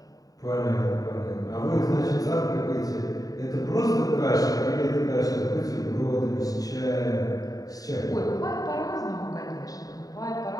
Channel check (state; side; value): late; right; 0.18 ms